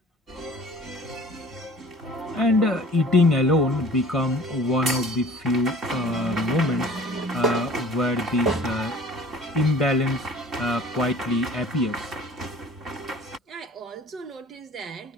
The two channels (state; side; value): normal; both; correlation 0.47